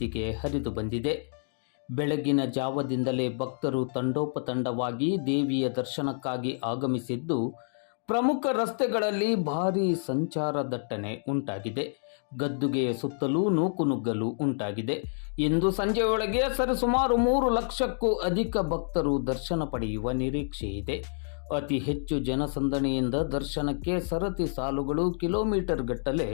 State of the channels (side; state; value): right; silent; digital silence